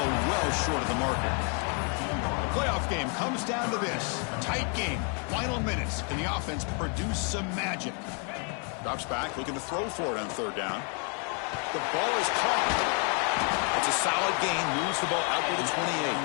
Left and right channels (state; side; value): quieter; right; 39.1 dB